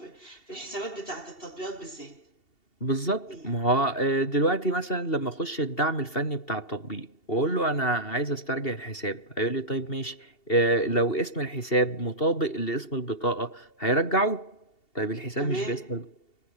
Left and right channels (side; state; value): right; late; 2.7 ms